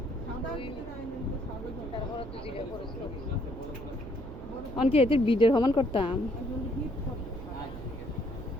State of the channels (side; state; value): right; noise; hum, 13 dB below the sound